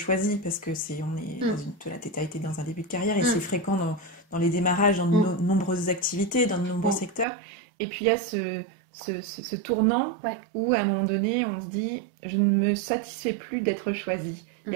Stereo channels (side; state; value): left; drops out; at 7.2 s